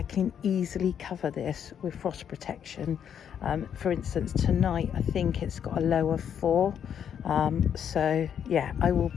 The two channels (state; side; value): quieter; right; 8.6 dB